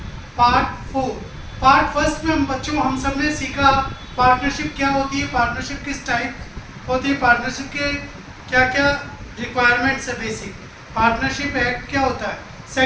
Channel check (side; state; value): both; identical; correlation 1.00